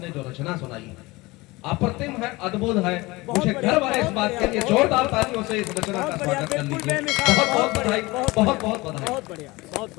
ने जो रचना सुनाई है अप्रतिम है, अद्भुत है। मुझे गर्व है इस बात के लिए। जोरदार तालियों से इस रचना का स्वागत कर लीजिए। बहुत बहुत बधाई, बहुत बहुत बधाई। बहुत बढ़िया बहुत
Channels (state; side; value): quieter; right; 22.1 dB